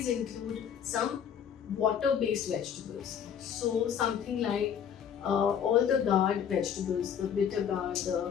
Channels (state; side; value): quieter; right; 8.3 dB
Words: include some water based vegetables. So something like all the gourd vegetables, the bitter gourd,